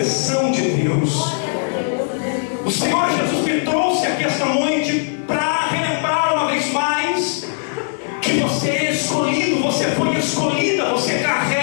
de Deus. O Senhor Jesus me trouxe aqui esta noite para relembrar uma vez mais que você é escolhido, você foi escolhida, você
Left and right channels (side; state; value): right; silent; 57 dB below the other